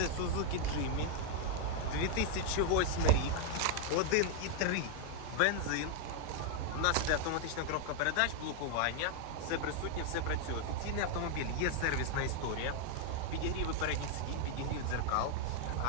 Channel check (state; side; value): different; both; correlation 0.00